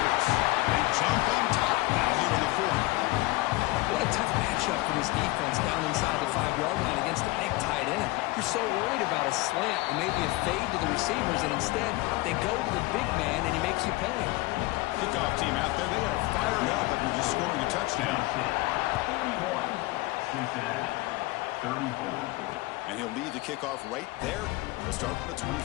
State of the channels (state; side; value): quieter; right; 20.9 dB